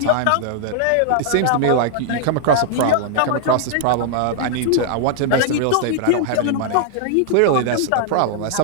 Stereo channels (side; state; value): both; different; correlation -0.01